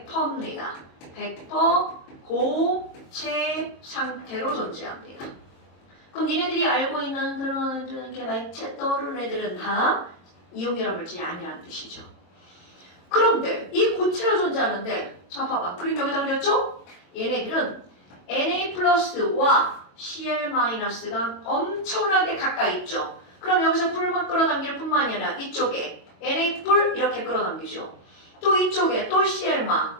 100% 고체 상태로 존재합니다. 그럼 니네들이 알고 있는 그런 이렇게 맥체 떠오르는 애들은 다 이온 결합 물질이 아니라는 뜻이죠. 그런데 이 고체로 존재하는데 자 봐봐 그림 여기다 그렸죠? 얘네들은 Na+와 Cl-가 엄청나게 가까이 있죠. 그럼 여기서 뿔만 끌어당기는 뿐만이 아니라 이쪽에 Na+ 이렇게 끌어당기죠. 또 이쪽에 또 Cl-,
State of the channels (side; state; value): right; late; 22 ms